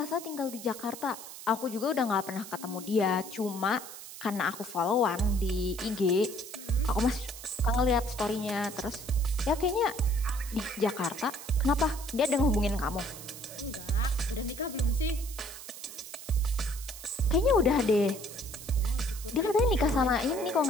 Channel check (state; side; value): noise; right; hiss, 13 dB below the sound